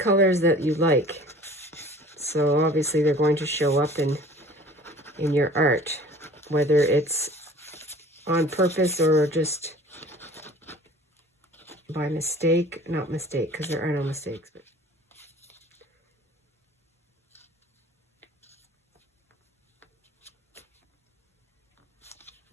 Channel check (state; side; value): normal; both; correlation 0.48